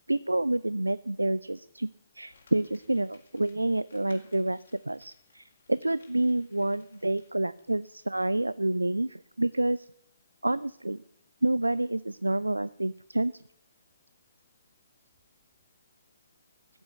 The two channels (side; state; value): both; inverted; correlation -1.00